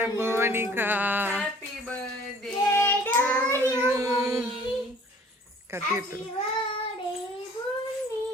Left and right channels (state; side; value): normal; both; correlation 0.53